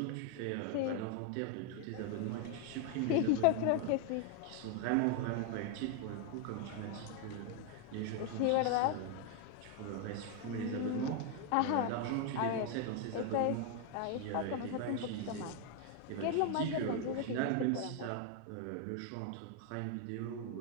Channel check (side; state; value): both; different; correlation 0.00